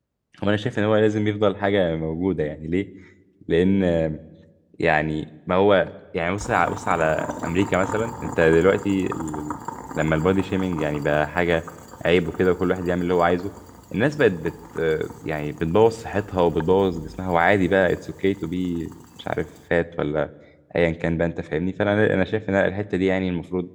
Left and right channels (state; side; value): identical; both; correlation 1.00